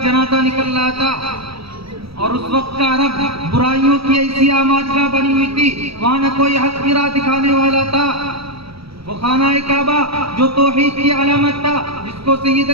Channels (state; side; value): late; left; 0.76 ms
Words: جنازہ نکل رہا تھا، اور اس وقت کا عرب برائیوں کی ایسی آماجگاہ بنی ہوئی تھی، وہاں نہ کوئی حق کی راہ دکھانے والا تھا۔ وہ خانہ کعبہ جو توحید کی علامت تھا، جس کو